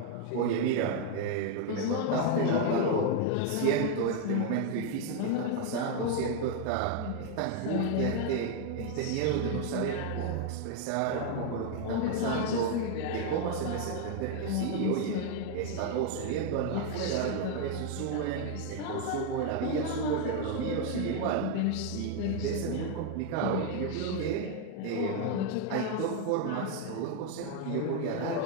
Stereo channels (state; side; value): different; both; correlation 0.00